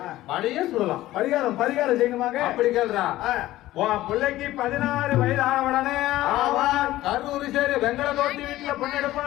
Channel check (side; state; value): right; quieter; 15.7 dB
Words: பழைய சொல்லலாம். பரிகாரம் செய்யணுமாங்க? அப்படி கேள்றா. உன் பிள்ளைக்கு 16 வயது ஆன உடனே கரூர் சரி வெங்கல தோட்டி வீட்டுல